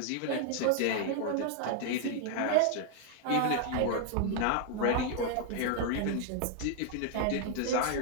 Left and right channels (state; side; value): different; both; correlation 0.00